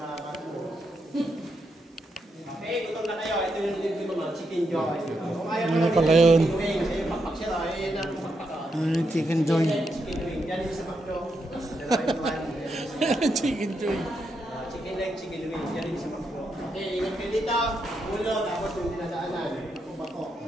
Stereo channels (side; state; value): both; normal; correlation 0.82